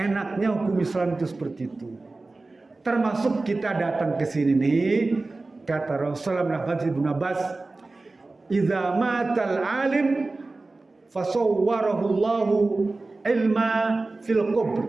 hukum Islam itu seperti itu. Termasuk kita datang ke sini nih, kata Rasulullah bin Abbas, "Idza matal alim fasawwarahu Allahu ilma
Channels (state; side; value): quieter; left; 3.3 dB